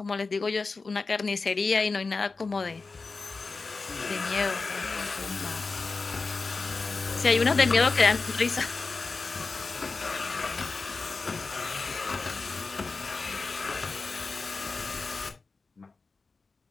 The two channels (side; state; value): right; quieter; 4.1 dB